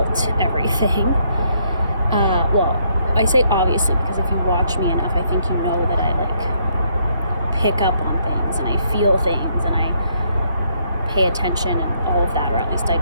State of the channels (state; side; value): inverted; both; correlation -0.72